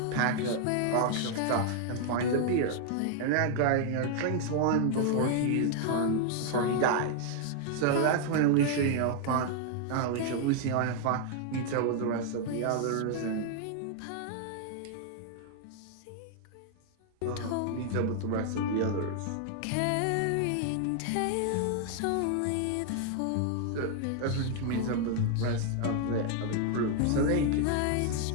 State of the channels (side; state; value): both; different; correlation 0.00